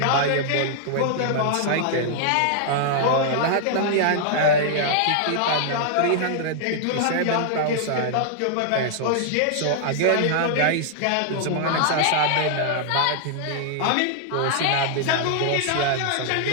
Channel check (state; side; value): different; both; correlation -0.01